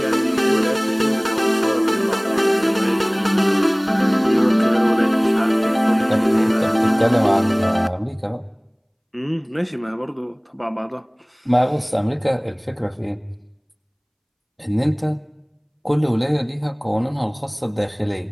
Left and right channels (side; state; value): both; identical; correlation 1.00